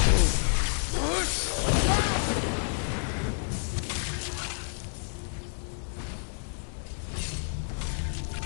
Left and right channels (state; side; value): silent; right; 58 dB below the other